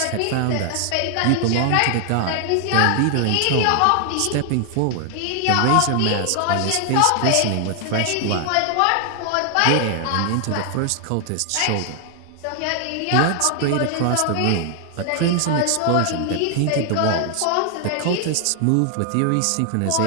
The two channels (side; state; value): both; different; correlation 0.00